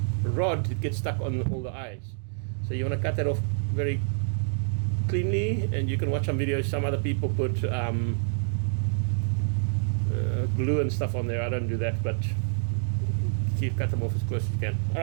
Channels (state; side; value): silent; left; digital silence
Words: rod, it gets stuck on all the eyes. So you want to cut that off very cleanly, and you can watch some videos. Some other people put glue and stuff on there. I don't do that, but cut them off as close as you can.